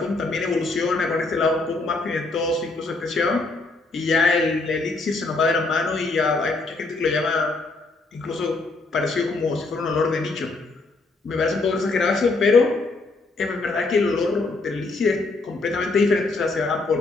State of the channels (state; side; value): quieter; right; 3.5 dB